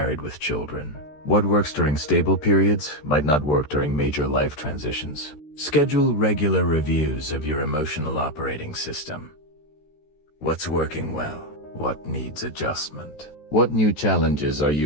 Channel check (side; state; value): right; late; 13 ms